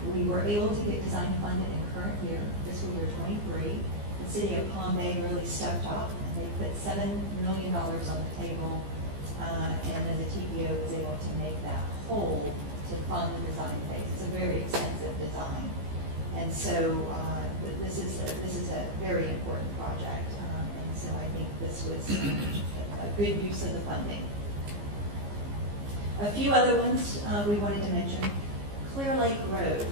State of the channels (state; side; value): late; left; 15 ms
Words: we were able to get design funded in current year, fiscal year 23. The city of Pompey really stepped up, and they put $7 million on the table, and then the TPO was able to make that whole to fund the design phase. It's a very expensive design. And so this is a very important project, and so I think this was a good use of the funding. A few other ones we wanted to mention. Clear Lake Road,